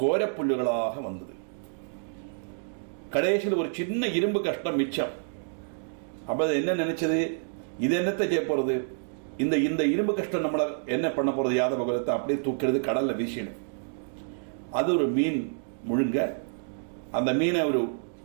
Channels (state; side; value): silent; left; digital silence